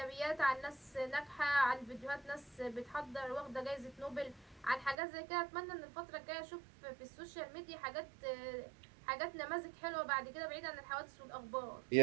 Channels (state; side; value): drops out; left; at 5.0 s